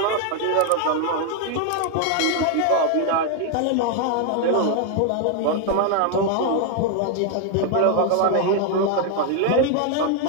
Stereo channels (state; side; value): different; both; correlation 0.01